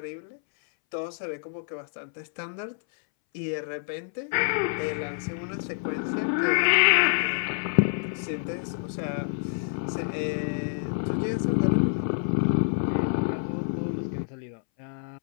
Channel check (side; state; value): right; silent; 60 dB below the other